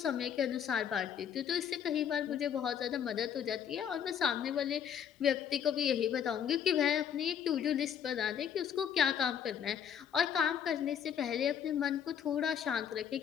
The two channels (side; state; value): right; quieter; 8.5 dB